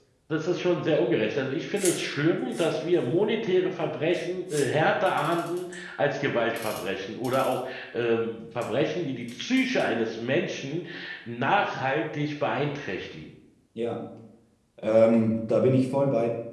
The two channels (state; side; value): identical; both; correlation 1.00